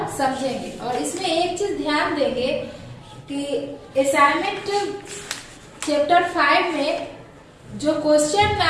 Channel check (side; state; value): both; identical; correlation 1.00